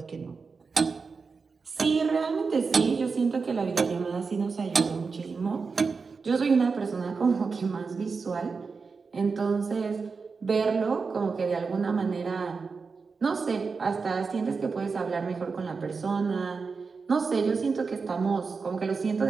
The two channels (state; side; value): quieter; left; 4.8 dB